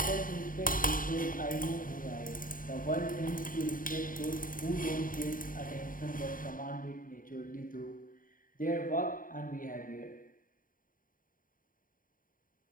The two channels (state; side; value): late; right; 0.40 ms